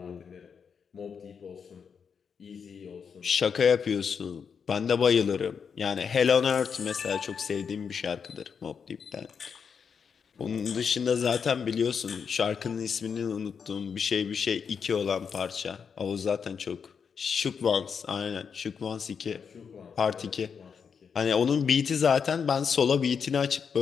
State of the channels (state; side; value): quieter; right; 6.5 dB